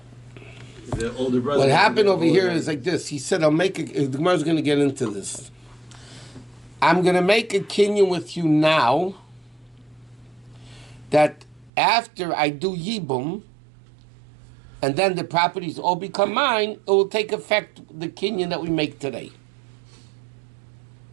the older brother. What happened over here older. is like this. He said, I'll make a, the Gemara's going to get into this. I'm going to make a kinyan with you now that after I do Yibum, and then the properties all become mine, it will take effect, the kinyan that we make today.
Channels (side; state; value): left; drops out; at 11.7 s